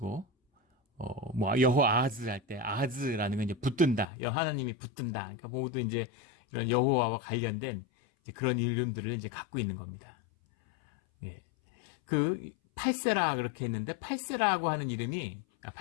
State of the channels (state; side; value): drops out; right; at 4.0 s